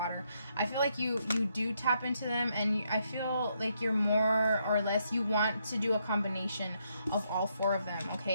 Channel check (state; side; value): inverted; both; correlation -0.76